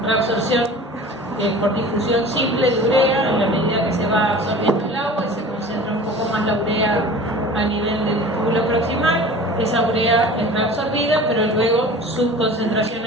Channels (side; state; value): both; normal; correlation 0.40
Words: reabsorción por difusión simple de urea en la medida que se va absorbiendo el agua y se concentra un poco más la urea a nivel del túbulo proximal. Esa urea es reabsorbida, pero luego su concentración